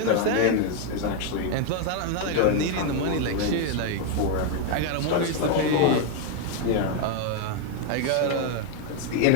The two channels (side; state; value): both; different; correlation 0.00